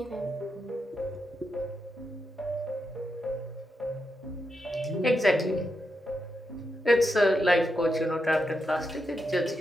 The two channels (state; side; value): normal; both; correlation 0.85